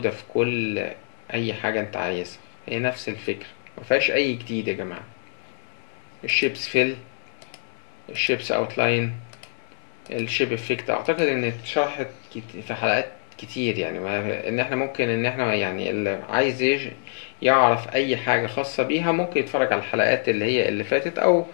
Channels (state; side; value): silent; right; 61 dB below the other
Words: في كل اي حاجة انت عايزها، هي نفس الفكرة، مفيهاش اي جديد يا جماعة. الشيبس فيل، الشيبس اوتلاين، الشيب افكت، اعتقد ان اتشرحت في حلقات كتير، يعني ان احنا ممكن ان احنا يعني اللي عايز يعرف اي حاجة خاصة بيها ممكن يتفرج على الحلقات اللي هي اللي فاتت، او